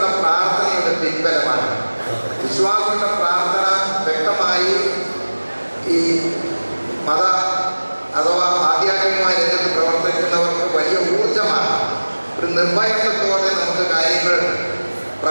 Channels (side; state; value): both; inverted; correlation -1.00